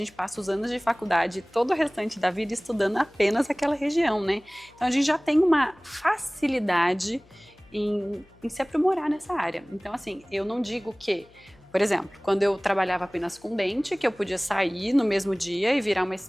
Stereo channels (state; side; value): noise; left; hum, 29 dB below the sound